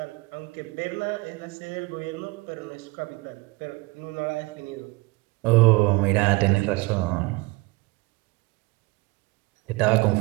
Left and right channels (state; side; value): quieter; left; 22.8 dB